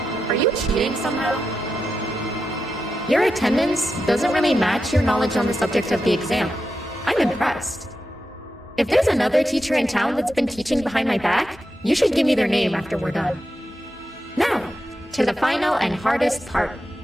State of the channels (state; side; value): normal; both; correlation 0.89